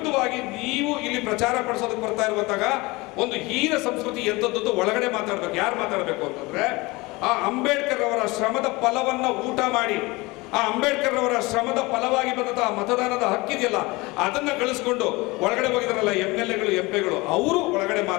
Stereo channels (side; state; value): right; quieter; 23.3 dB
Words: ನೀವು ಇಲ್ಲಿ ಪ್ರಚಾರ ಪಡಿಸೋದಕ್ಕೆ ಬರ್ತಾ ಇರುವಂತಾಗ ಒಂದು ಹೀನ ಸಂಸ್ಕೃತಿ ಎಂತದ್ದು ಒಳಗಡೆ ಮಾತಾಡ್ಬೇಕು. ಯಾರು ಮಾತಾಡಬೇಕು ಅಂತಂದ್ರೆ ಆ ಅಂಬೇಡ್ಕರ್ ಅವರ ಶ್ರಮದ ಫಲವನ್ನ ಊಟ ಮಾಡಿ, ಆ ಅಂಬೇಡ್ಕರ್ ಅವರ ಶ್ರಮದ ಫಲವಾಗಿ ಬಂದಂತಹ ಮತದಾನದ ಹಕ್ಕಿದೆಯಲ್ಲ ಅದನ್ನ ಗಳಿಸ್ಕೊಂಡು ಒಳಗಡೆ ಹೋಗಿದಾರಲ್ಲ MLAಗಳು MP ಗಳು, ಅವರು ಒಳಗಡೆ